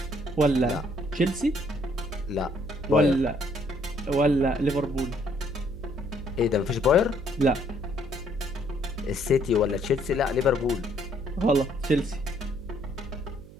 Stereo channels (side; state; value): right; noise; hum, 19 dB below the sound